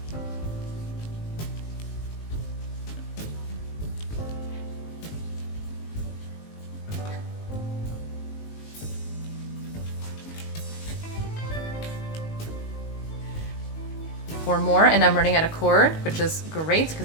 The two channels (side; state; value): right; late; 19 ms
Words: Four more, and I'm running out of cord, which is great